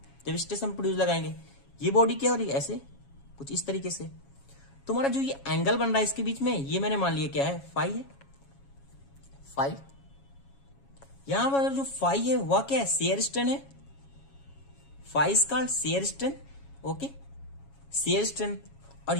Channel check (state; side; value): late; right; 7.3 ms